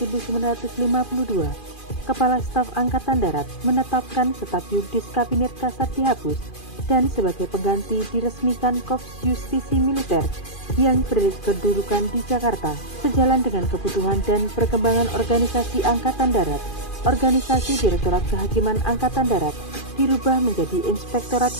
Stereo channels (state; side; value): late; right; 2.4 ms